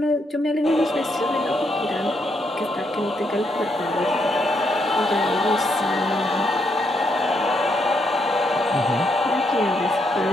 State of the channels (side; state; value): both; normal; correlation 0.77